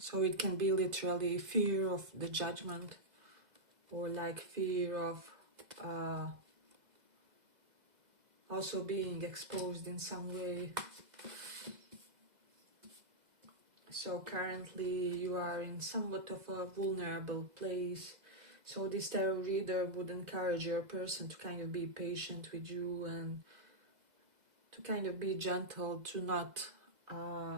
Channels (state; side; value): late; left; 2.0 ms